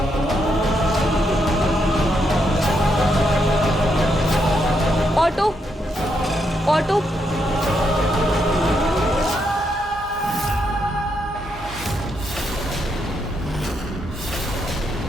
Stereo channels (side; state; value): both; normal; correlation 0.79